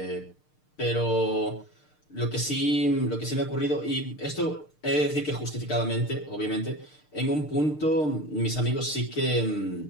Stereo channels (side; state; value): right; late; 6.6 ms